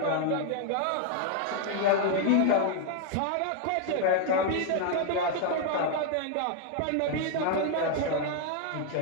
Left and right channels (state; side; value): different; both; correlation 0.00